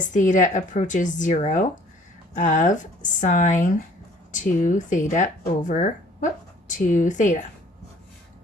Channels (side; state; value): both; normal; correlation 0.55